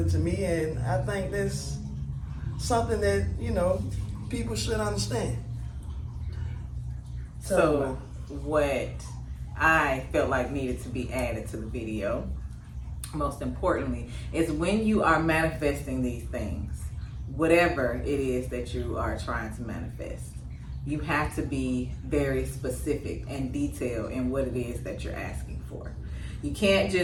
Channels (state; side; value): identical; both; correlation 1.00